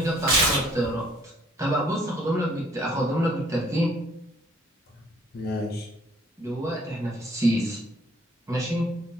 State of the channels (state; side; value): normal; both; correlation 0.61